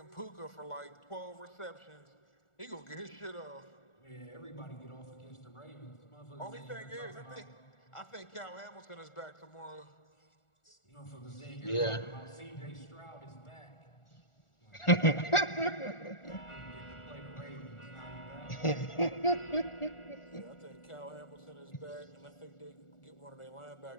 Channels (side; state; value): right; late; 1.4 ms